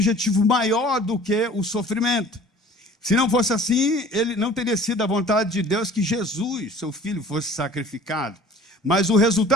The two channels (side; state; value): both; normal; correlation 0.48